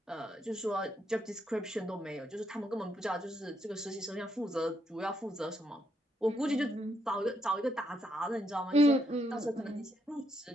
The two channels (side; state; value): both; normal; correlation 0.77